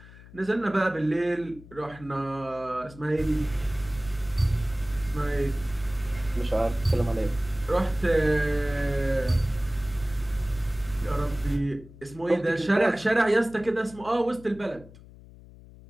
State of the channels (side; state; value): left; noise; hum, 20 dB below the sound